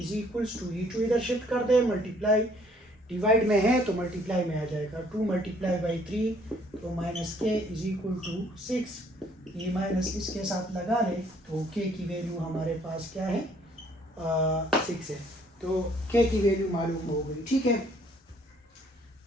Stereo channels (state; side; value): normal; both; correlation 0.62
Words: equals to, ये 2 इधर शिफ्ट कर दे, मल्टीप्लाई डिवाइड में है तो मल्टीप्लाई में आ जाएगा, 2 मल्टीप्लाई बाई 3 तो minus k is equal to 6, ये माइनस इसके साथ लगा ले तो k की वैल्यू हमारे पास क्या है 6 है। तो के की वैल्यू मालूम हो गई, ठीक है।